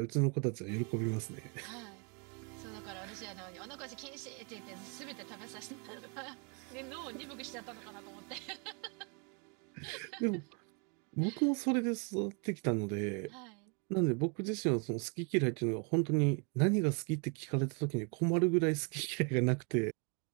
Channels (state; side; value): quieter; left; 35.2 dB